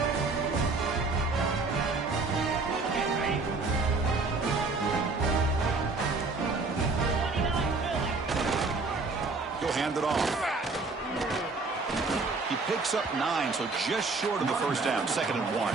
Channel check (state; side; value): quieter; left; 3.8 dB